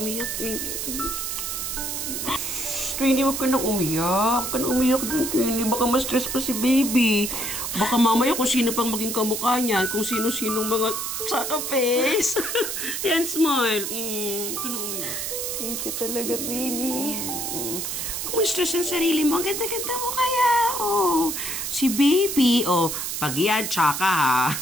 Twinnie. Twinnie, huwag ka nang umiyak. Huwag ka nang umiyak dyan, Twinnie. Baka ma-stress pa si baby. Baka mamaya kung sino pang maging kamukha niyan, kung sino-sinong mga tsaka face. Yan, smile. Huwag ka nang umiyak. Thank you talaga, Twinnie. Kung ma-stress ang sarili mo, ang ganda-ganda mo kaya. Oh, si baby. Oh, pag yan, tsaka ha.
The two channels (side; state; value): right; noise; hiss, 3 dB below the sound